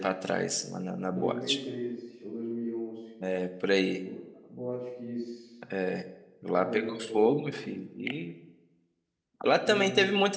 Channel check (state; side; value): identical; both; correlation 1.00